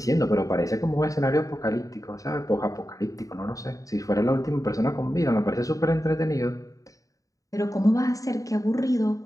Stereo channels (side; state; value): right; late; 0.16 ms